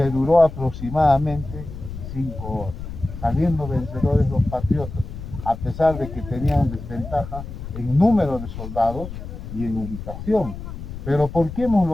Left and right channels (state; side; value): noise; left; rumble, 10 dB below the sound